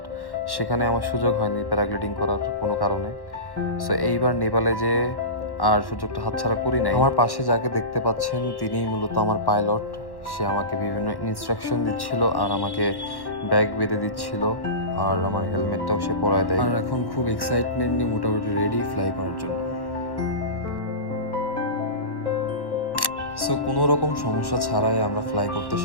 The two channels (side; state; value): right; late; 1.1 ms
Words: সেখানে আমার সুযোগ হয়নি প্যারাগ্লাইডিং করার কোনো কারণে। সো এইবার নেপালে যে আর সুযোগটা হাতছাড়া করি নাই। আমার পাশে যাকে দেখতে পাচ্ছেন তিনিই মূলত আমার পাইলট। সে আমাকে বিভিন্ন ইনস্ট্রাকশন দিচ্ছিল আর আমাকে ব্যাগ বেঁধে দিচ্ছিল, আর আমার হেলমেটটাও সে পরায় দেয়। আর এখন খুব এক্সাইটমেন্ট নিয়ে মোটামুটি রেডি ফ্লাই করার জন্য। সো কোনো রকম সমস্যা ছাড়াই আমরা ফ্লাই করতে